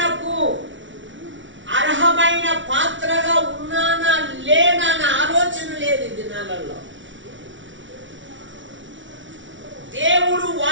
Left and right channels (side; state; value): left; late; 0.56 ms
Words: అర్హమైన పాత్రగా ఉన్నానా లేనా అనే ఆలోచన లేదు ఈ దినాలలో. దేవుడు